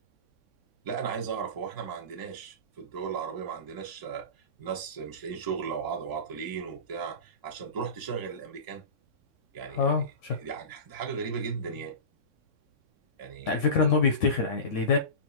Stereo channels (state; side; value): late; right; 3.6 ms